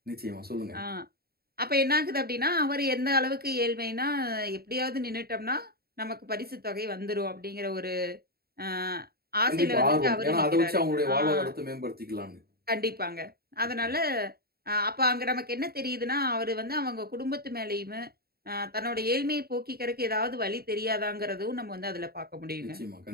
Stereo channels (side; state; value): left; late; 0.45 ms